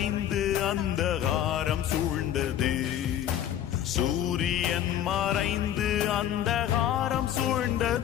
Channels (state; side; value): quieter; right; 10.9 dB